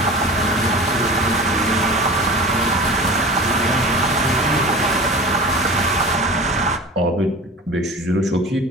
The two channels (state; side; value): normal; both; correlation 0.36